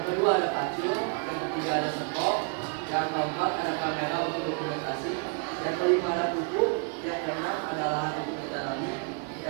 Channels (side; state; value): left; quieter; 38.5 dB